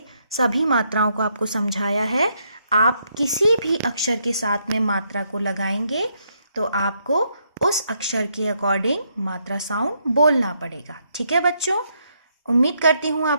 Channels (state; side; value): inverted; both; correlation -0.76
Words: सभी मात्राओं को आपको समझाया है। आप किसी भी अक्षर के साथ में मात्रा को लगाएंगे तो आपको उस अक्षर के अकॉर्डिंग मात्रा साउंड बोलना पड़ेगा। ठीक है बच्चों। उम्मीद करती हूँ